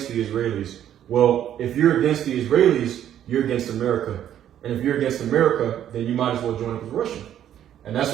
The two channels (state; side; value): quieter; left; 10.7 dB